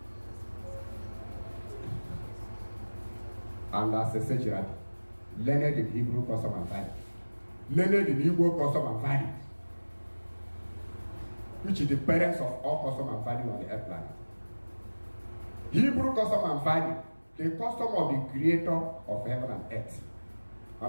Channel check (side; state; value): both; inverted; correlation -1.00